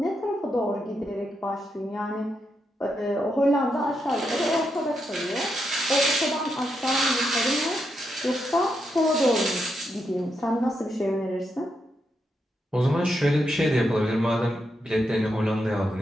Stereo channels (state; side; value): normal; both; correlation 0.83